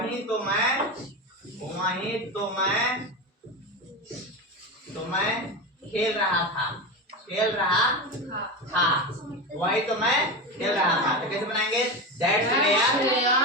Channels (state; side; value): normal; both; correlation 0.20